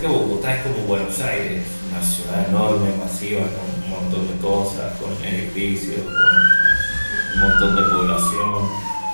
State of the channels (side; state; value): both; inverted; correlation -1.00